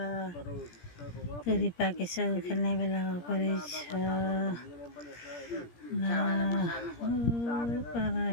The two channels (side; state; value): right; late; 17 ms